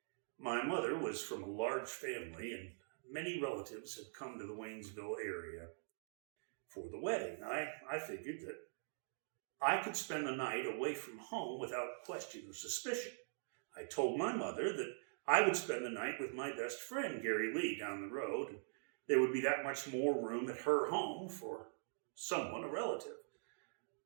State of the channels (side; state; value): left; silent; digital silence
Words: My mother was from a large family, and many relatives had come to the Waynesville area for the wedding. I figured that I could spend the night away from home without question or suspicion. I told my mother that I would spend the night with my best friend, Gary Lee, down the road, and there would be that much more room at her home for someone, a relative.